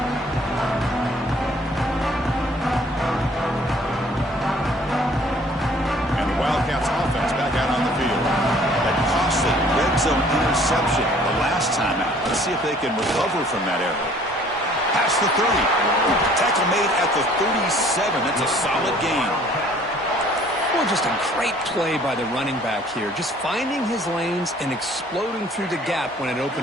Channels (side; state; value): both; normal; correlation 0.56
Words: And the Wildcats offense back out on the field. That costly red zone interception the last time out. Let's see if they can recover from that error. Past the 30. Tackle made at the 37. That's a solid gain. Well, just a great play by the running back here. Just finding his lanes and exploding through the gap when it